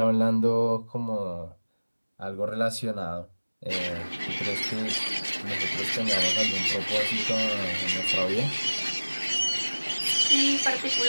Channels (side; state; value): both; inverted; correlation -1.00